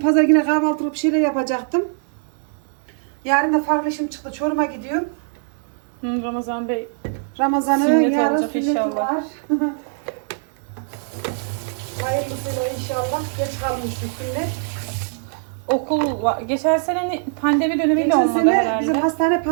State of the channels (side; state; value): left; silent; digital silence